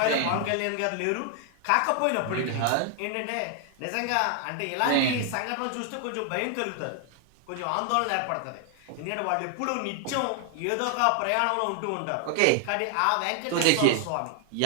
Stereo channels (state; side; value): different; both; correlation 0.00